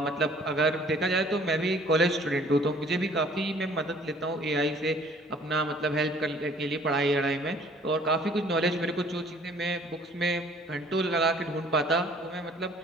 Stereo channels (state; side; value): normal; both; correlation 0.55